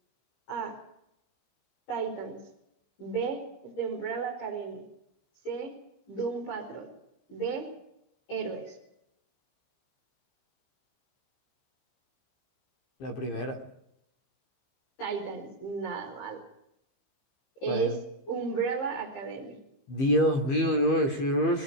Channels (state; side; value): late; right; 15 ms